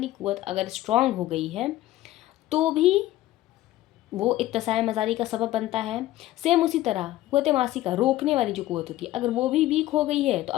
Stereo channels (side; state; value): right; quieter; 15.5 dB